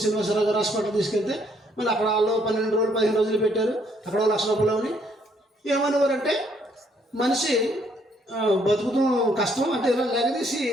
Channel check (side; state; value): both; normal; correlation 0.68